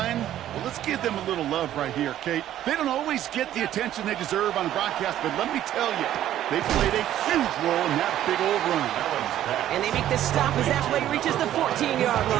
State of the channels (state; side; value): quieter; left; 12.2 dB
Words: well, let's give them a little love right here, Kate. They don't always get the attention they deserve on the broadcast, but let me tell you, they played a huge role in that big old run. And they make the stop as that play reaches the 14-yard